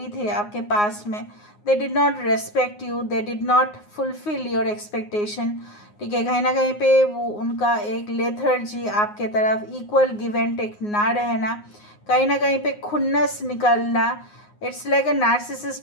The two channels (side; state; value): right; late; 9.6 ms